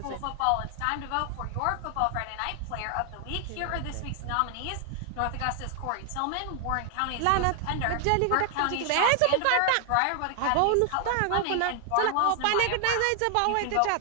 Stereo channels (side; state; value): both; different; correlation 0.00